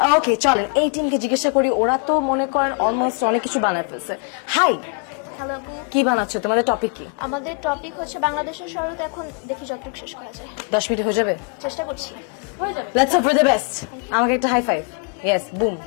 ওকে চলেন এই টিমকে জিজ্ঞাসা করি, ওরা তো মনে করেন অলমোস্ট অনেক কিছু বানায় ফেলছে। হাই, হ্যালো, কি বানাচ্ছো? তোমাদের টপিক কি? আমাদের টপিক হচ্ছে বাংলাদেশের শরৎ। এখন দেখি যতটুকু শেষ করা যায়। 10 মিনিট হয়ে যাবে? চেষ্টা করছি। Let's hope for the best. আমাকে একটা হাই ফাইভ। Yes, broom.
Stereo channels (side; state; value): right; quieter; 35.7 dB